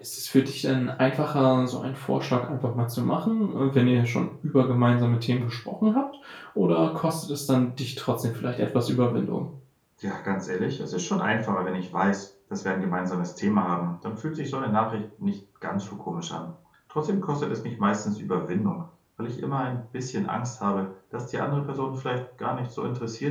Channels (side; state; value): both; identical; correlation 1.00